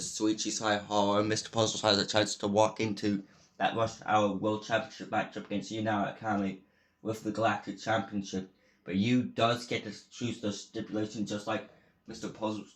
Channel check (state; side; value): identical; both; correlation 1.00